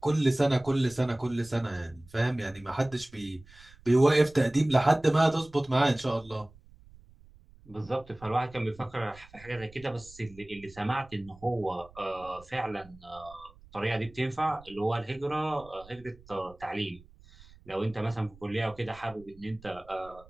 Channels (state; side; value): noise; right; rumble, 23 dB below the sound